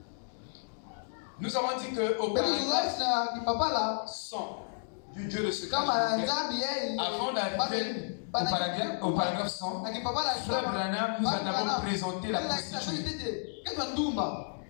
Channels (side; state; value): right; silent; digital silence